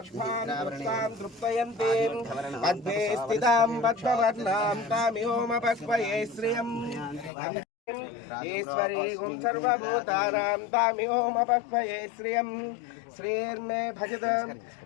तृप्तयन्तीं पद्मे स्थितां पद्मवर्णां तामिहोमपह्वये श्रियम् ईश्वरीं सर्वभूतानां तामिहोमपह्वये श्रियम् श्रीर्मे भजत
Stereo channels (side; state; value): right; drops out; at 7.3 s